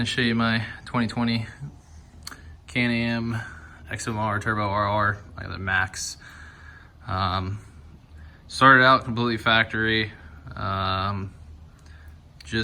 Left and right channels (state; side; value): identical; both; correlation 1.00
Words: to show you my 2020 CanAm XMR Turbo RR. I got the Max. Started out completely factory.